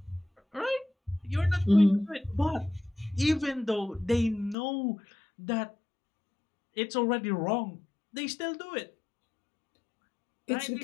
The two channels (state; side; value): drops out; right; at 4.5 s